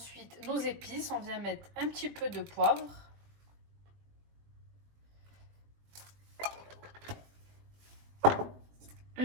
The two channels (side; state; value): left; late; 20 ms